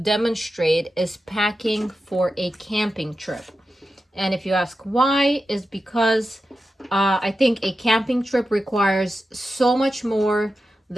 is packing for a camping trip. And if you ask why, is because I think a camping trip requires so much more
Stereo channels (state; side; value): normal; both; correlation 0.91